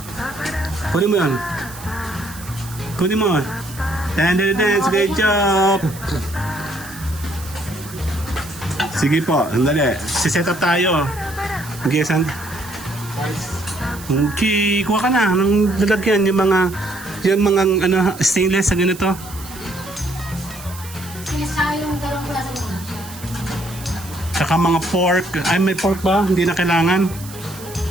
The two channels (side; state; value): right; noise; hiss, 16 dB below the sound